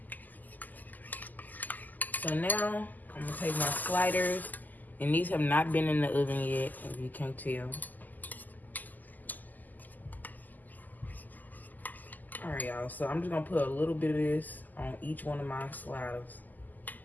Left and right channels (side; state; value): right; late; 0.084 ms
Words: So now I'm gonna take my sliders, and these have not been in the oven yet, if you can't tell. All right, y'all, so I'm just gonna put a little bit of this on each one of my sliders.